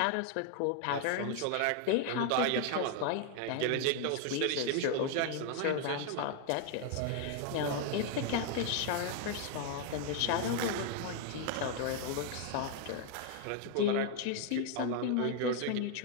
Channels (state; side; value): different; both; correlation 0.00